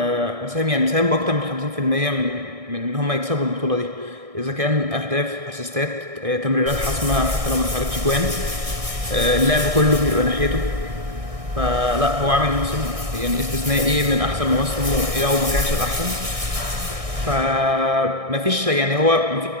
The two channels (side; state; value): left; late; 1.6 ms